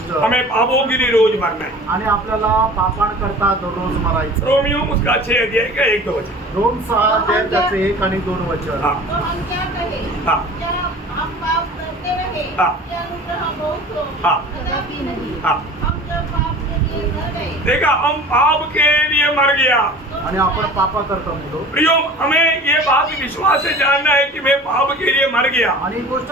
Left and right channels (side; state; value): both; normal; correlation 0.42